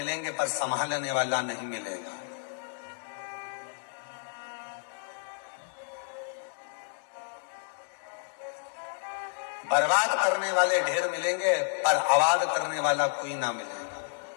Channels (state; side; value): silent; right; digital silence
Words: पर संभालने वाला नहीं मिलेगा। बर्बाद करने वाले ढेर मिलेंगे पर आबाद करने वाला कोई ना मिलेगा।